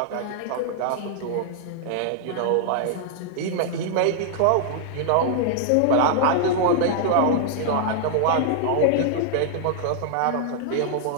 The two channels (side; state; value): both; different; correlation -0.01